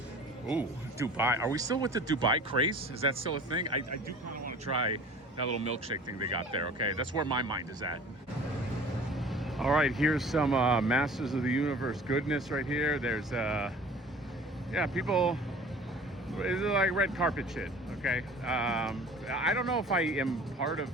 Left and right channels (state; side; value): normal; both; correlation 0.45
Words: Ooh, Dubai. Are we still with the Dubai craze? Is that still a thing? I do kind of want to try that little milkshake thing they got there, okay? That's where my mind is at. All right, here's some Masters of the Universe goodness right here. There's, yeah, people, it's like red carpet shit, okay? I don't know if I am part